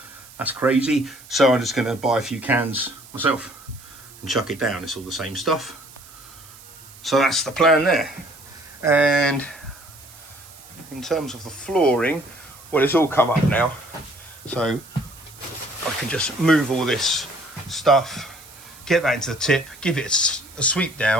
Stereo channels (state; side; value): noise; right; hiss, 20 dB below the sound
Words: that's crazy. So I'm just going to buy a few cans myself and chuck it down. It's all the same stuff. So that's the plan there. And in terms of the flooring, well, it's all come up now, so I can just move all this stuff, get that into the tip, give it a sweep